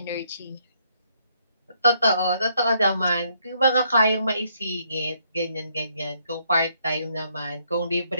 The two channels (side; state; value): both; inverted; correlation -0.71